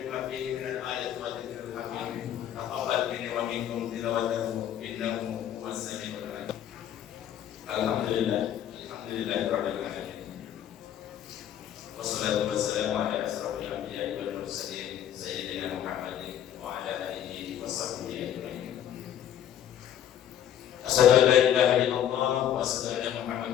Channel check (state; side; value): quieter; right; 10.4 dB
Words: fihi min al-ayati wa dzikril hakim. Taqabbal minni wa minkum tilawatahu innahu huwas samiul alim. Alhamdulillah, alhamdulillahirabbil alamin. Wassalatu wassalamu ala asrofil anbiya'i wal mursalin sayyidina Muhammadin wa ala alihi wa sahbihi ajma'in. Asyhadu an la ilaha illallah wa asyhadu anna